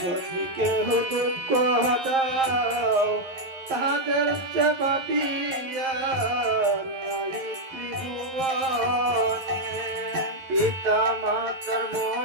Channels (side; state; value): left; late; 11 ms